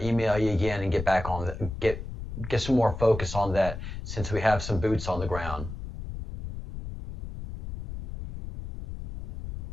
email you again and get back on get some more focus on that, since we have some boots on the ground.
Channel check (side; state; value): left; noise; rumble, 8 dB below the sound